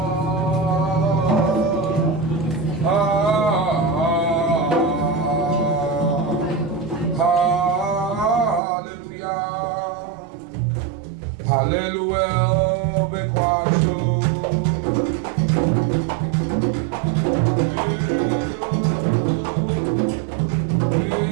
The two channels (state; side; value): drops out; left; at 8.6 s